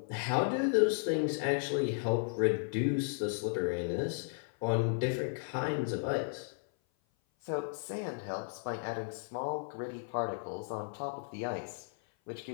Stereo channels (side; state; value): right; silent; 55 dB below the other